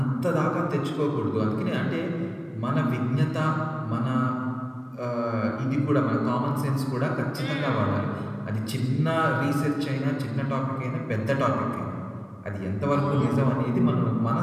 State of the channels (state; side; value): identical; both; correlation 1.00